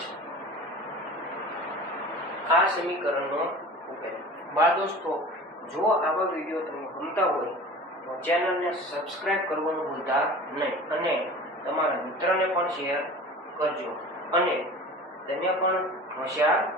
આ સમીકરણનો ઉકેલ બાળ દોસ્તો જો આવા વિડીયો તમને ગમતા હોય તો ચેનલને સબસ્ક્રાઇબ કરવાનું ભૂલતા નહીં અને તમારા મિત્રને પણ શેર કરજો અને તમે પણ હોશિયાર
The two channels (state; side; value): normal; both; correlation 0.39